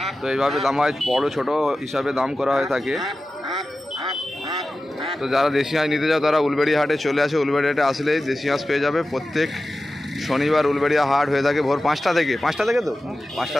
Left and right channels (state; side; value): normal; both; correlation 0.94